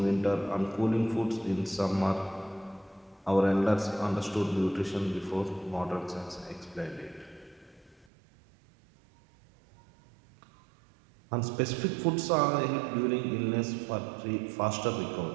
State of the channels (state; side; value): drops out; left; at 8.1 s